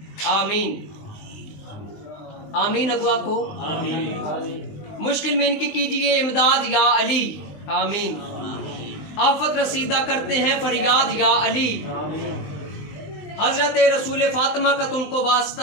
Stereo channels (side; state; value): right; late; 19 ms